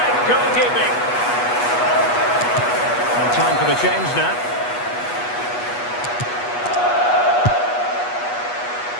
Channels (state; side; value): late; right; 8.2 ms